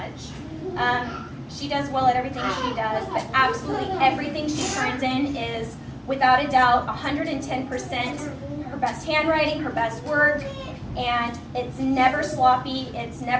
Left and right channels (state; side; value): identical; both; correlation 1.00